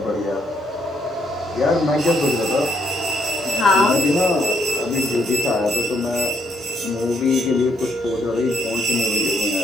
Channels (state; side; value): normal; both; correlation 0.73